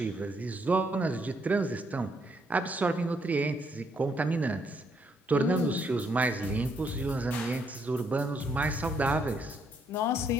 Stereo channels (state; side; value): normal; both; correlation 0.72